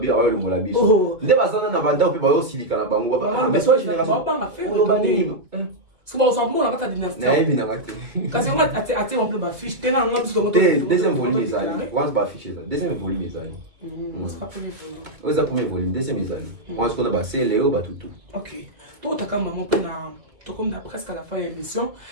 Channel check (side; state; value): left; late; 2.5 ms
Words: le mola biso. Nde bazana na banda pe ba aussi lika na bango ba mais soit génération. Lo bani. C'est bon ça mon na kata dynastie. Na ebi na kata. Kasi on a on peut ba fiche tena on parce que deuxième volume les amis. Once ba fiche ça. Deuxième volume les amis. On sera premier volume. On sera premier volume deuxième les amis. On se connaît ba c'est Léo ba tout. OK. Toi ta comme maman pe na comme presque à la fin de l'émission,